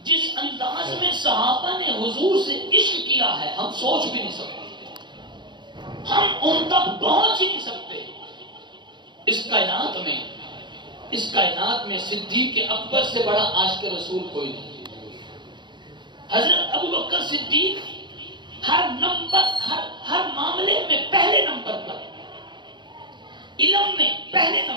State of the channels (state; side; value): late; left; 0.22 ms